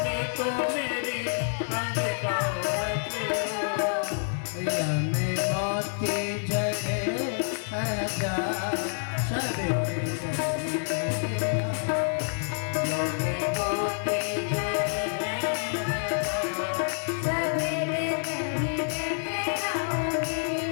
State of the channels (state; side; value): silent; right; 59 dB below the other